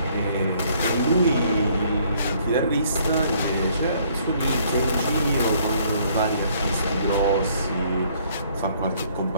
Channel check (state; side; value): inverted; both; correlation -0.63